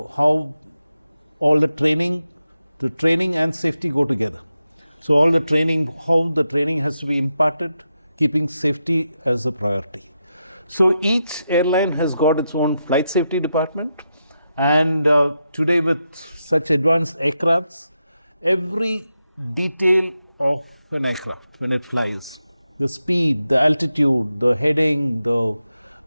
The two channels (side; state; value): both; inverted; correlation -0.87